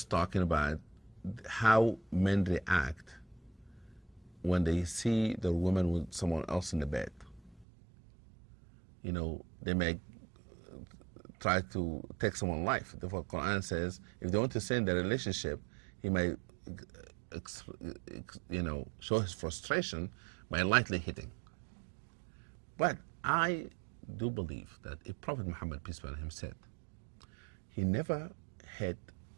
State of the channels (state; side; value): drops out; left; at 7.7 s